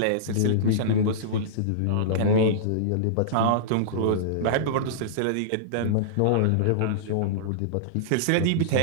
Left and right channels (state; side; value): different; both; correlation -0.03